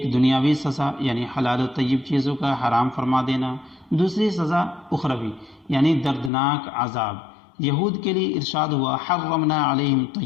دنیاوی سزا یعنی حلال و طیب چیزوں کا حرام فرما دینا، دوسری سزا اخروی یعنی دردناک عذاب۔ یہود کے لیے ارشاد ہوا حرمنا علیہم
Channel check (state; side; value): drops out; right; at 6.3 s